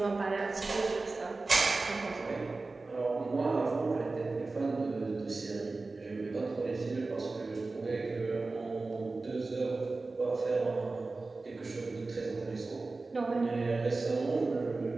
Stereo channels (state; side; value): quieter; left; 3.6 dB